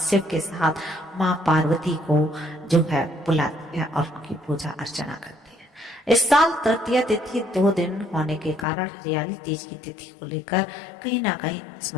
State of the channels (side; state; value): right; drops out; at 8.7 s